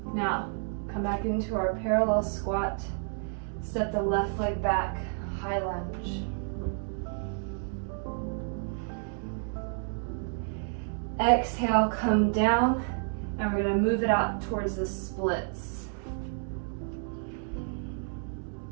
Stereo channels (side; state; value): left; silent; 58 dB below the other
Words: Now, come back into our parallel squat. Step the left leg back, high lunge. Exhale, come down, and we're going to move it out towards the splits.